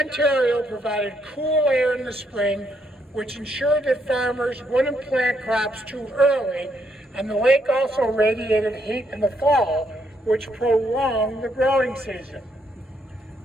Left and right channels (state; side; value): normal; both; correlation 0.74